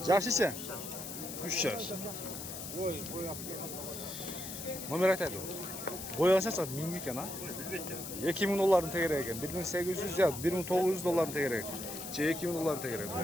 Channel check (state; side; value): noise; left; hiss, 8 dB below the sound